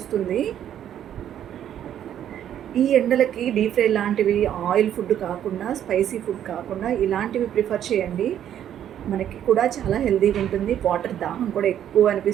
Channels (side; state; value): left; quieter; 10.4 dB